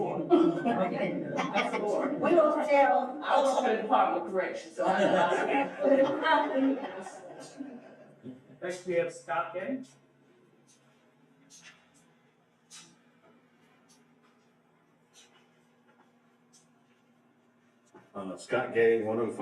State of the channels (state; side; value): identical; both; correlation 1.00